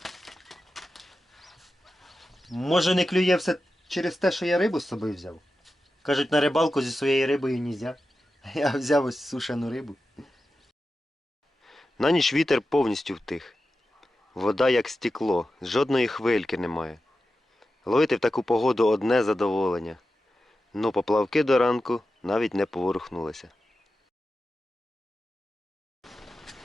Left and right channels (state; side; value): normal; both; correlation 0.92